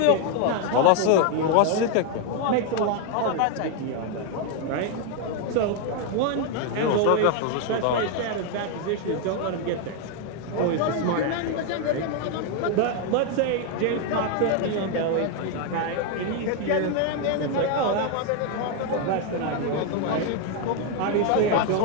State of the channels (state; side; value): different; both; correlation 0.01